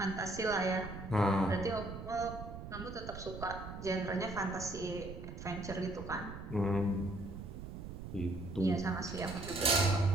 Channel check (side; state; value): right; noise; rumble, 9 dB below the sound